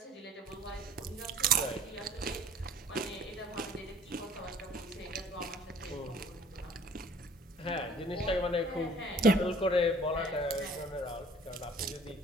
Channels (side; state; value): both; normal; correlation 0.53